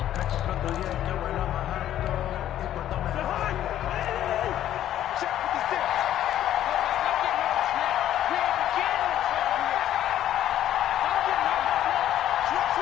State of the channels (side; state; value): right; quieter; 11.9 dB